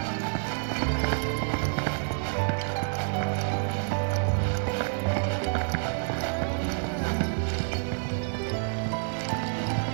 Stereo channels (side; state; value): left; silent; 59 dB below the other